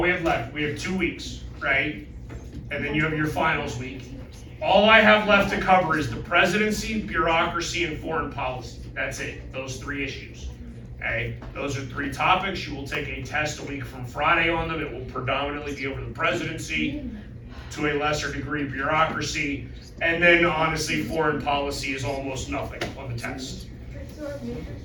we have left, we have 2 weeks, right? And then you have your finals week. All I have left to cover is the presidency, bureaucracy, and foreign policy. That's it, those 3 issues. Okay, those are 3 topics. You will take a test a week from Friday on them. It will predominantly be over the presidency, to a lesser degree bureaucracy, and then honestly foreign policy is almost nothing on the test.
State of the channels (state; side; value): identical; both; correlation 1.00